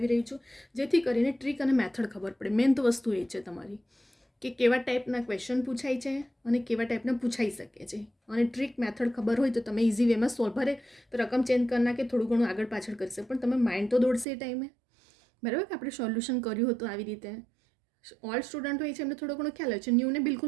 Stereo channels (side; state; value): left; drops out; at 14.2 s